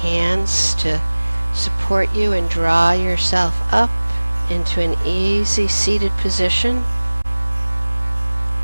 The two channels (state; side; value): inverted; both; correlation -1.00